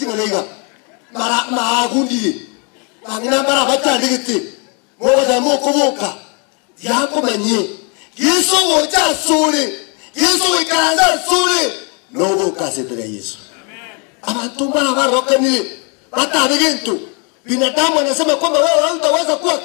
mara maagundi bangina mara batandikite moza mokoboka yako manye Yesu wocha sore Yesu wikaanza sore noboka setere Yesu abantu mara barokani batabigento binadamu anasema kwamba wewe hutaweza kuwa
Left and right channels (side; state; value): right; quieter; 34.1 dB